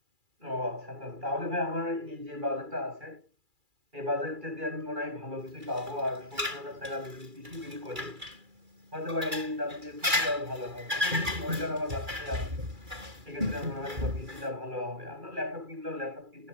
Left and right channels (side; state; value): left; late; 2.3 ms